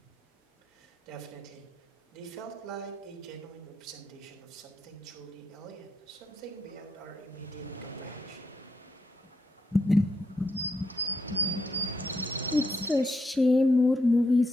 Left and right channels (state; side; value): normal; both; correlation 0.78